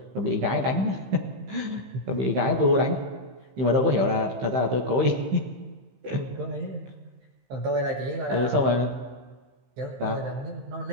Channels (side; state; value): left; late; 15 ms